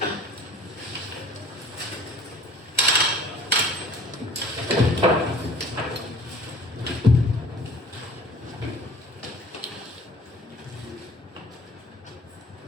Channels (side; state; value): both; normal; correlation 0.47